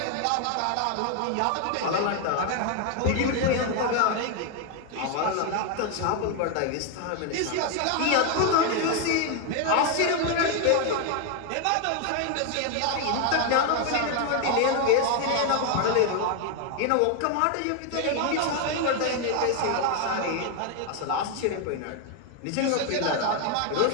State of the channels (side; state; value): both; different; correlation 0.01